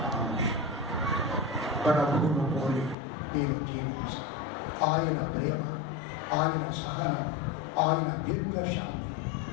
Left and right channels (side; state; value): right; drops out; at 3.0 s